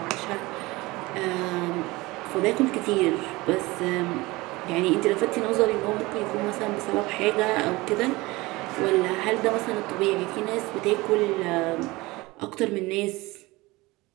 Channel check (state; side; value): quieter; left; 21.6 dB